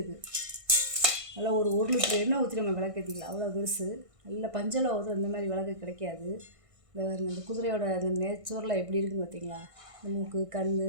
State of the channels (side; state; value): left; late; 1.6 ms